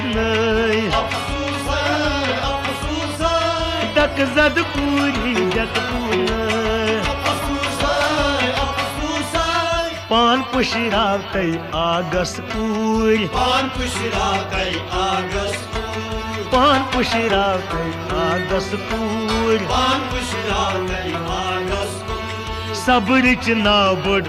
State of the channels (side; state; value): both; identical; correlation 1.00